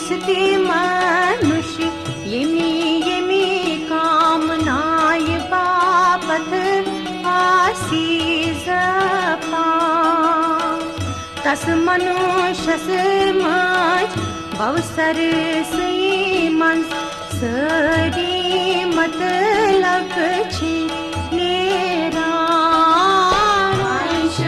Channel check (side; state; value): both; identical; correlation 1.00